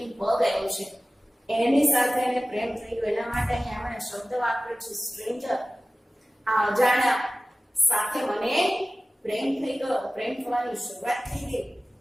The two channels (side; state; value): both; normal; correlation 0.96